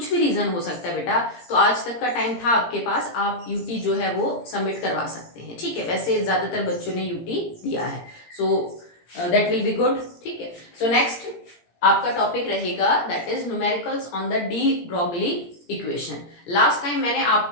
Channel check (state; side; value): late; right; 17 ms